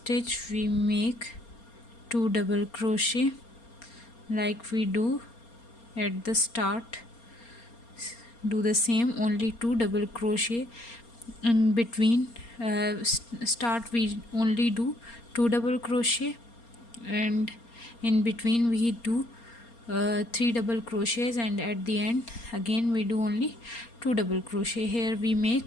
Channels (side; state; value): right; late; 4.3 ms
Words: we make 2 double crochet like we do at the start. Do the same, only 2 double crochet in between. Start we only do 2 double crochet and in between we do 3 double crochets, and at the end again we do only 2 double crochet. Here we